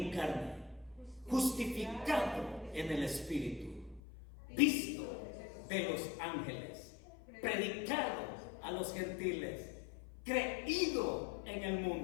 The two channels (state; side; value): drops out; right; at 4.0 s